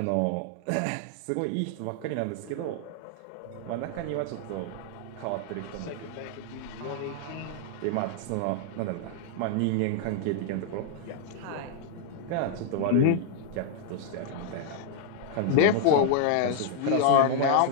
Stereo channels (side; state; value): both; different; correlation 0.00